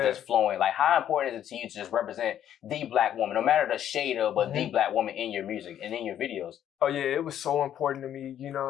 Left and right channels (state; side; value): quieter; right; 10.5 dB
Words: just flowing. Like, how important is it to you to just represent the black woman, no matter the shade of, but the black woman in your music and in your videos? Oh yeah, it was so important to me. You know